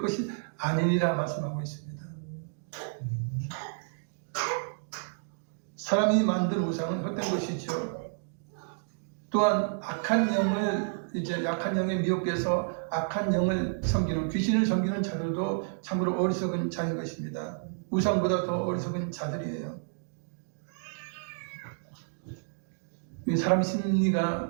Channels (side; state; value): left; silent; digital silence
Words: 아니니라 말씀하고 있습니다. 사람이 만든 우상은 헛된 것이죠. 또한 악한 영을 이제 약한 영에 미혹돼서 악한 영을 섬기는 귀신을 섬기는 자들도 참으로 어리석은 자인 것입니다. 우상보다 더 어리석은 자들이에요. 사람